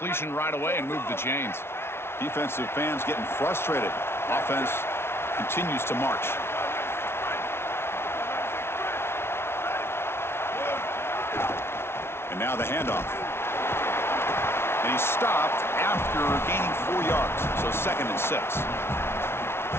right away, and moved the chains. Defensive fans getting frustrated. Offense continues to march. And now the handoff. And he's stopped after gaining 4 yards. So 2nd and 6.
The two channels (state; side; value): late; right; 0.12 ms